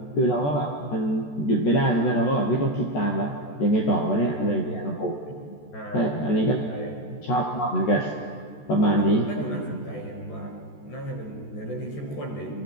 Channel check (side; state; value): right; late; 14 ms